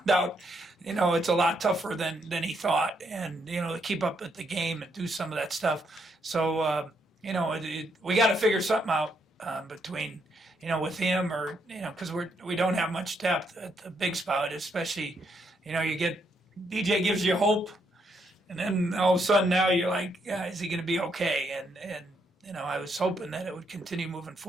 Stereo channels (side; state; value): both; normal; correlation 0.76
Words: out, it's a lot tougher than he thought. And, to keep up with the game and do some of that stuff. So, we got to figure something out between, with him, or, because we don't have much depth at the big spot, especially, you get, DJ gives you hope, and then all of a sudden now you're like, is he going to be okay? And I was hoping that it would continue moving